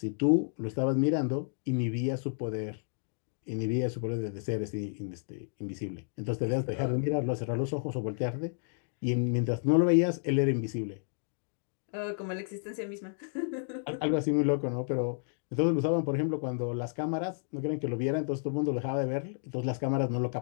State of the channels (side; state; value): right; silent; digital silence